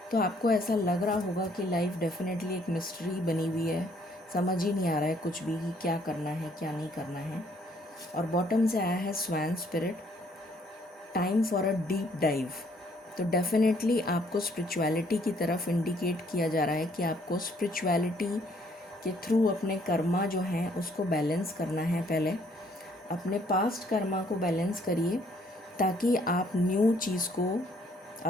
तो आपको ऐसा लग रहा होगा कि लाइफ डेफिनेटली एक मिस्ट्री बनी हुई है, समझ ही नहीं आ रहा है कुछ भी कि क्या करना है क्या नहीं करना है। और बॉटम से आया है swan spirit, time for a deep dive. तो डेफिनेटली आपको स्पिरिचुअलिटी की तरफ इंडिकेट किया जा रहा है कि आपको स्पिरिचुअलिटी के थ्रू अपने कर्मा जो हैं उसको बैलेंस करना है। पहले अपने पास्ट कर्मा को बैलेंस करिए ताकि आप न्यू चीज़ को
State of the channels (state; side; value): normal; both; correlation 0.65